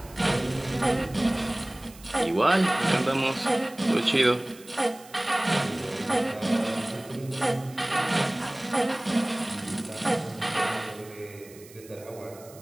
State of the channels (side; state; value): right; noise; hiss, 22 dB below the sound